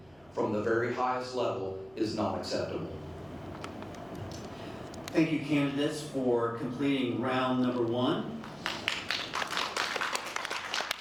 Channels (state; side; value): noise; right; hum, 30 dB below the sound